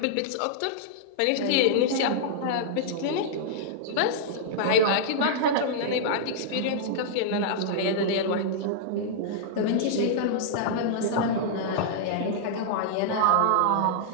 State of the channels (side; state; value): both; different; correlation -0.02